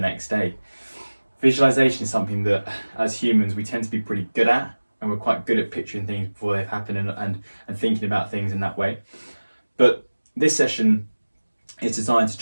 day. Visualization is something that, as humans, we tend to be pretty good at, and we're quite good at picturing things before they've happened and thinking about things in that way. But this session is designed to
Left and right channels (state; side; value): inverted; both; correlation -1.00